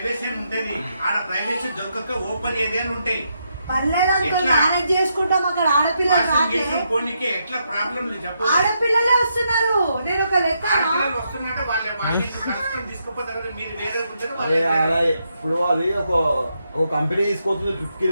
ఉంటది, ఆడ ప్రైవసీ దొరకక ఓపెన్ ఏరియాలు ఉంటాయి. పర్లేదంతా మేనేజ్ చేసుకుంటాం, అక్కడ ఆడపిల్లలు రాట్లే. పోనీకి ఎట్లా ప్రాబ్లం లేదు చెప్పు. ఆడపిల్లలే వస్తున్నారు, నేను ఒక లెక్క. ఆడపిల్లలు వస్తున్నట్టే వాళ్ళని కష్టం తీసుకుపోతారు కదా, మీరు వేరే ఉంటుంది. అరే అలా ఇప్పుడు అది ఒక కంపెనీ తీసుకొస్తుంది ట్రిప్ కి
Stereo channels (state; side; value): inverted; both; correlation -0.80